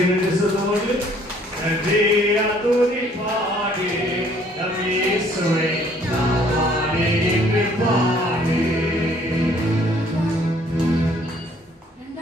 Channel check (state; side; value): normal; both; correlation 0.61